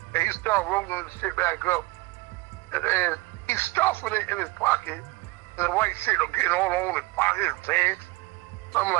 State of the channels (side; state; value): left; quieter; 22.4 dB